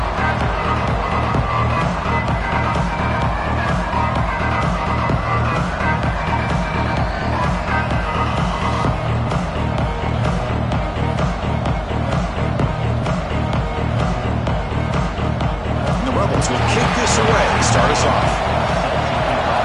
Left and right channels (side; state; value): both; identical; correlation 1.00